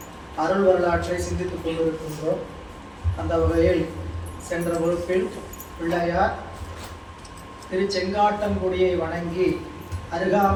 அருள் வரலாற்றை சிந்தித்துக் கொண்டிருக்கின்றோம். அந்த வகையில் சென்ற வகுப்பில் பிள்ளையார் திருச்செங்காட்டங்குடியை வணங்கி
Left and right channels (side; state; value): both; identical; correlation 1.00